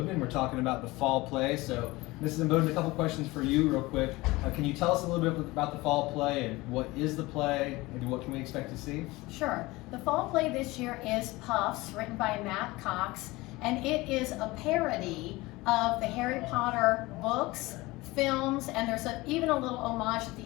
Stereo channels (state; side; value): quieter; right; 21.0 dB